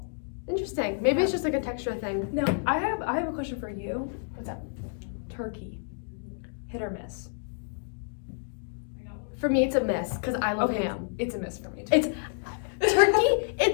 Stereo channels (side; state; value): right; silent; digital silence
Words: Interesting. Maybe it's just like a texture thing. No, I have a question for you. What's up? Turkey. Hit or miss? For me, it's a miss because I love Okay, ham. It's a miss for me too. It's turkey.